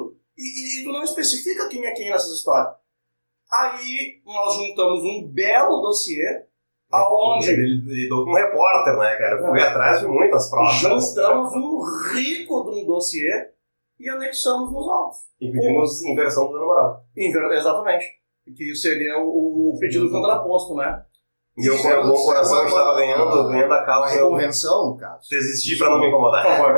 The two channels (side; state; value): both; inverted; correlation -1.00